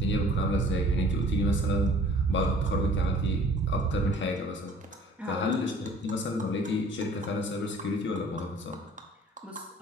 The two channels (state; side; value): normal; both; correlation 0.52